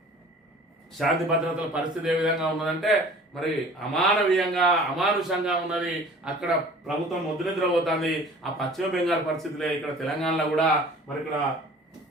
శాంతి భద్రతల పరిస్థితి ఏ విధంగా ఉన్నదంటే మరి అమానవీయంగా అమానుషంగా ఉన్నది. అక్కడ ప్రభుత్వం ముద్రనిద్రపోతుంది. ఆ పశ్చిమ బెంగాల్ పరిస్థితులే ఇక్కడ తెలంగాణలో కూడా మరి ఇక్కడ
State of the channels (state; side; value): normal; both; correlation 0.47